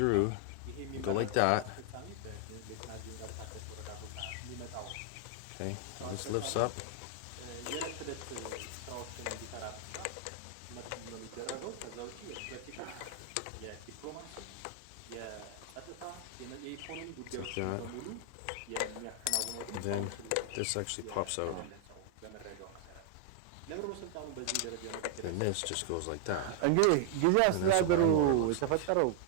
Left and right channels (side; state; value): both; different; correlation 0.00